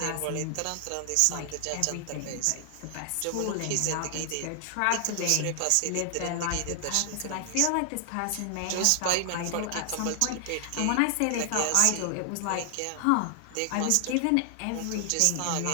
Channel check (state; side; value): different; both; correlation 0.00